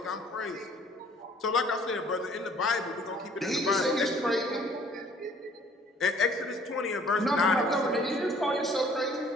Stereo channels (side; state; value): both; normal; correlation 0.56